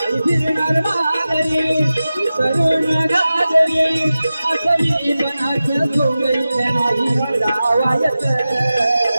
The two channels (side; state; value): both; inverted; correlation -0.95